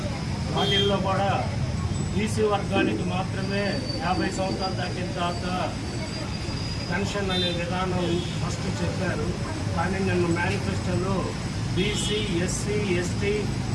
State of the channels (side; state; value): both; identical; correlation 1.00